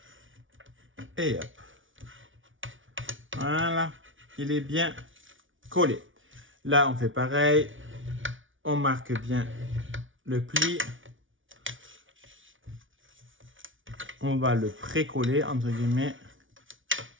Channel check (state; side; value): late; left; 0.57 ms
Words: Et hop. Voilà. Il est bien collé. Là, on fait pareil. On marque bien le pli. On va le pré-coller, entre guillemets.